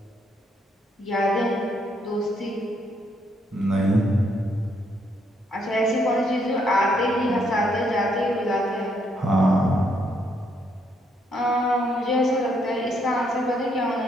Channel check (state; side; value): normal; both; correlation 0.73